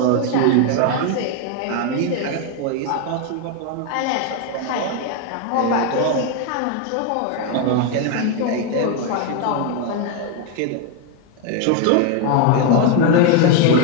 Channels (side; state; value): both; different; correlation 0.01